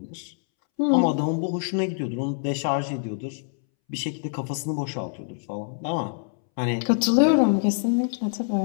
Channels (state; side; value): silent; right; 62 dB below the other